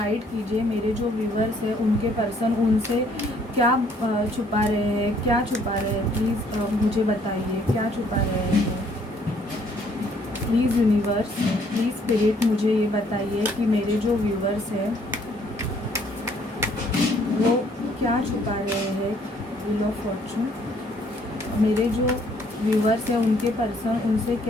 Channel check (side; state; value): both; normal; correlation 0.64